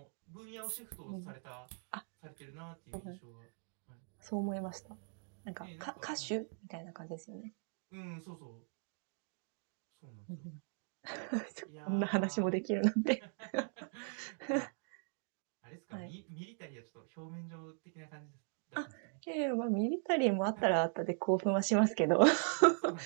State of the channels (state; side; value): silent; left; 52 dB below the other